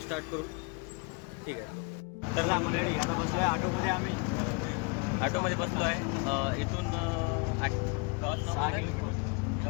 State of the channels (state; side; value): quieter; right; 31.3 dB